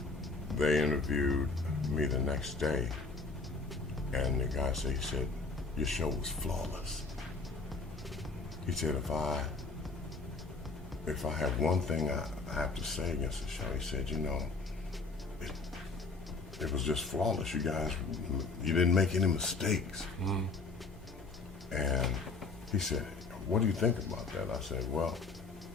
they interviewed me the next day, and the guy said, your show was flawless. He said, if I have one thing I have to say against the show, he said, it was just flawless. You guys, you didn't make any mistakes. Mm. And he said, what do you think about that? I said, well,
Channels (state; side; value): quieter; right; 4.0 dB